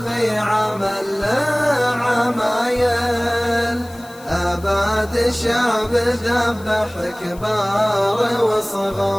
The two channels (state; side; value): noise; left; hiss, 23 dB below the sound